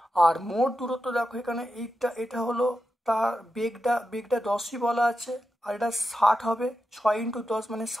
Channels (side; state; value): both; normal; correlation 0.89